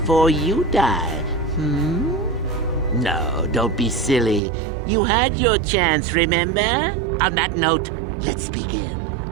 you die? No, don't be silly. You had your chance, remember? On that note, let's begin.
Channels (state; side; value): drops out; left; at 4.4 s